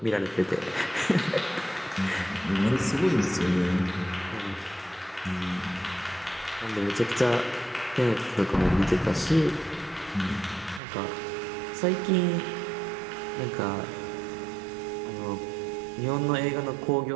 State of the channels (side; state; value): left; drops out; at 10.8 s